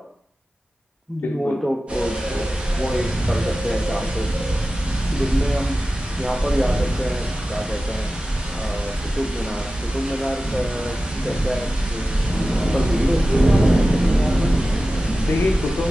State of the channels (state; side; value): normal; both; correlation 0.94